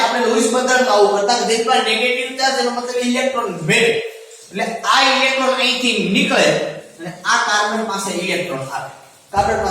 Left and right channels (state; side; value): identical; both; correlation 1.00